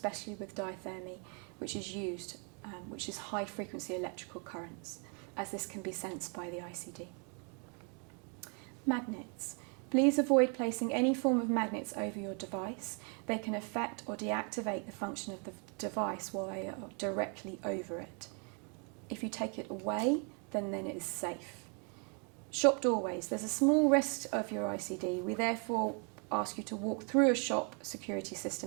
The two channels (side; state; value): left; quieter; 38.0 dB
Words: with diathermy, which is high frequency electrical currents, as this can be sensed by the ICD. Magnets. Please avoid placing any form of magnets over your device. They can affect or deactivate the function of the device while they are directly over it. If you take it away, then it is safe. Shop doorways. There's a small risk of your ICD. We therefore ask you to walk through a shop security